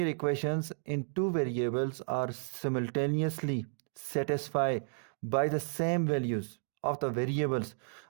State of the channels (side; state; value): left; silent; digital silence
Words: equations in two variables are simultaneously satisfy by the same values of the variables.